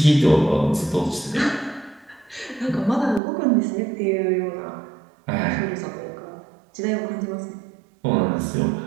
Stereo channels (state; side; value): drops out; left; at 3.2 s